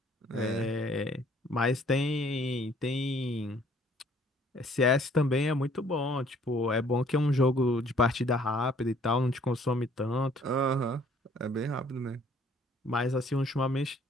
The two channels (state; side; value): normal; both; correlation 0.59